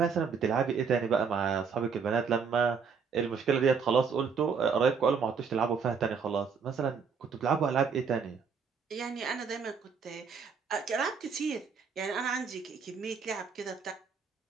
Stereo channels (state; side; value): quieter; left; 5.9 dB